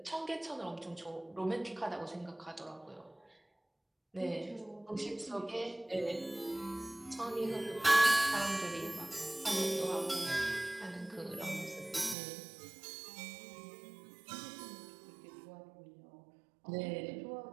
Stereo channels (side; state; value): left; drops out; at 12.2 s